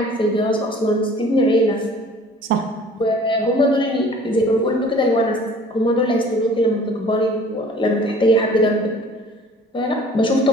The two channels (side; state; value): both; normal; correlation 0.50